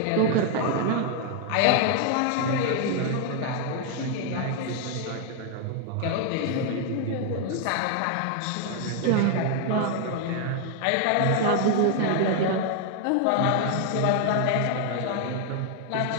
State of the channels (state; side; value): different; both; correlation 0.00